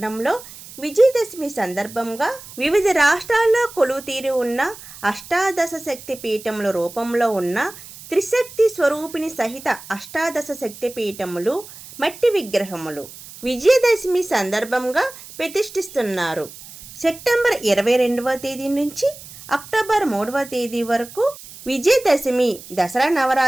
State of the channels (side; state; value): right; noise; hiss, 17 dB below the sound